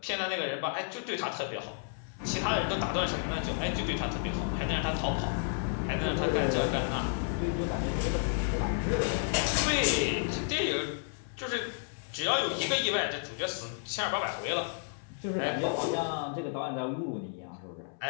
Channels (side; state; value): right; silent; 56 dB below the other